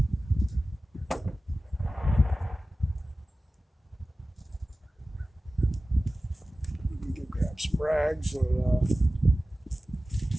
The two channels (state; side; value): normal; both; correlation 0.96